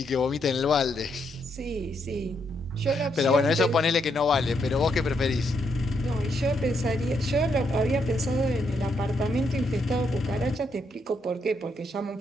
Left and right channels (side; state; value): both; normal; correlation 0.77